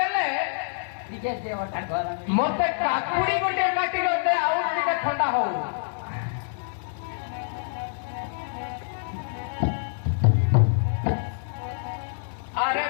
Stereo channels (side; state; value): right; silent; 61 dB below the other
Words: ଟିକେ ଦେହଟା ଗରମ ମତେ କାକୁଡି ଗୋଟେ କାଟି ଦେ ଆଉ ଟିକେ ଥଣ୍ଡା ହଉ আরে